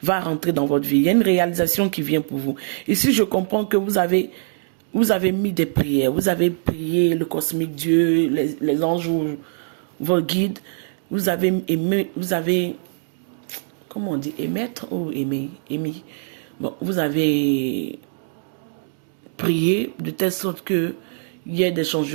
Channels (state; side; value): silent; left; digital silence